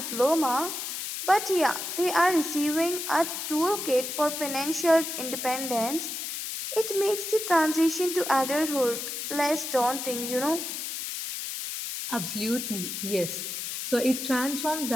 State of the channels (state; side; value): noise; left; hiss, 5 dB below the sound